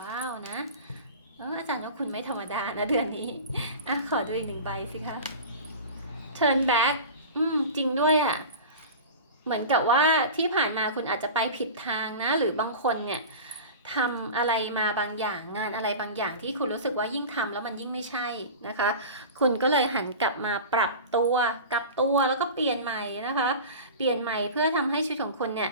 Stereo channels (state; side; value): inverted; both; correlation -0.33